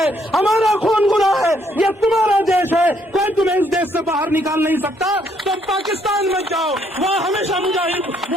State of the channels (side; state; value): both; normal; correlation 0.69